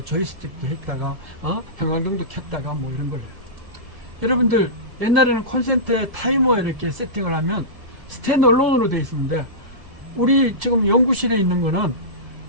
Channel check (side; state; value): left; late; 1.7 ms